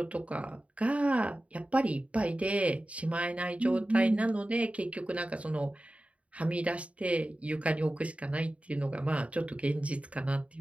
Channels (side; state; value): left; late; 0.065 ms